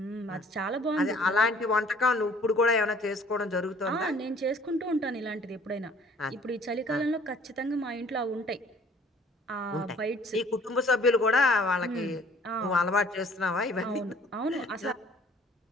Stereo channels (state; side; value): normal; both; correlation 0.55